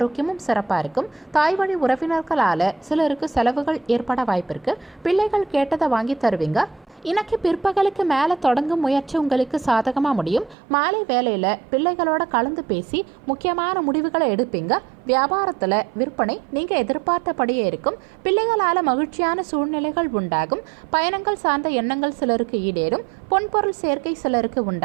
சிறப்பா இருக்கும். தாய் வழி உறவினர்களால சிலருக்கு செலவுகள் ஏற்பட வாய்ப்பு இருக்கு. பிள்ளைகள் கேட்டதை வாங்கி தருவீங்க. இன்னைக்கு பிற்பகலுக்கு மேலே தொடங்கும் முயற்சி உங்களுக்கு சாதகமாக முடியும். மாலை வேலையில் பிள்ளைகளோட கலந்து பேசி முக்கியமான முடிவுகளை எடுப்பீங்க. வியாபாரத்தில் விற்பனை நீங்கள் எதிர்பார்த்தபடியே இருக்கும். பிள்ளைகளால் மகிழ்ச்சியான சூழ்நிலைகள் உண்டாகும். பயணங்கள் சார்ந்த எண்ணங்கள் சிலருக்கு ஈடேறும். பொன்பொருள் சேர்க்கை சிலருக்கு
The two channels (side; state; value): left; drops out; at 10.6 s